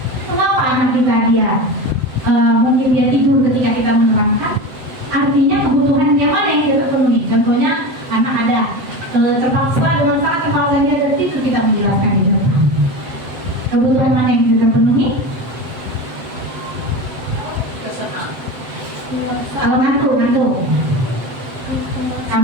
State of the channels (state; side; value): late; left; 7.9 ms